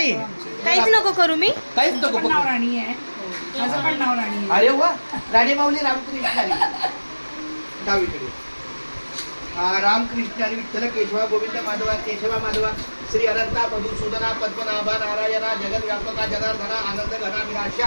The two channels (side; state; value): both; inverted; correlation -1.00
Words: काहीच नको करू मी. काहीच नको नाव राणी आहे. माझं पण नाव राणी आहे. अरे वा. राणी माऊली रामकृष्ण आली डावीकडे. रामकृष्ण आणि विठ्ठल केशवा गोविंद माधवा केशवा माधवा श्री अनंता मधुसूदना पद्मनाभा नारायणा जगद्व्यापका जनार्दना आनंद घना